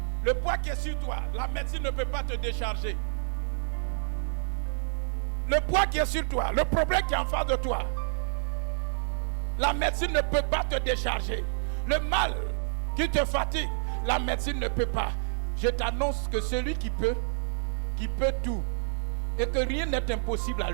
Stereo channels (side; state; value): left; silent; digital silence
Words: Le poids qui est sur toi, la médecine ne peut pas te décharger. Le poids qui est sur toi, le problème qui est en face de toi, la médecine ne peut pas te décharger. Le mal qui te fatigue, la médecine ne peut pas. Je t'annonce que celui qui peut tout, et que rien n'est impossible à